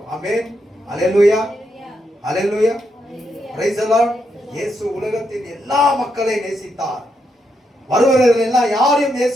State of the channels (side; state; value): both; normal; correlation 0.81